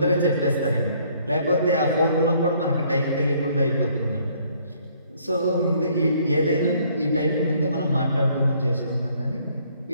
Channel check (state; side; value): inverted; both; correlation -0.64